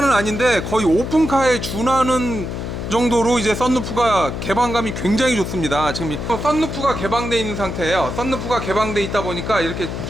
아닌데 거의 오픈카에 준하는 정도로 이제 썬루프가 개방감이 굉장히 좋습니다. 지금 썬루프가 개방되어 있는 상태예요. 썬루프가 개방되어 있다 보니까 이렇게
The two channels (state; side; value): noise; left; hum, 5 dB below the sound